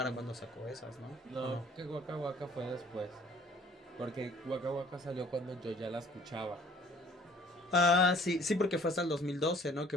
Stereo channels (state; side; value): normal; both; correlation 0.54